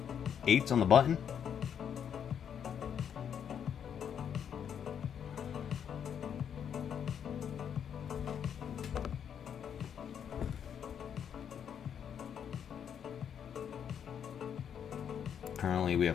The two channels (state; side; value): quieter; right; 8.3 dB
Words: 8's on the button. Currently, we have